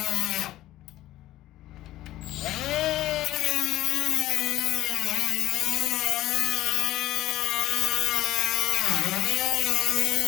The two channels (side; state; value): right; quieter; 15.1 dB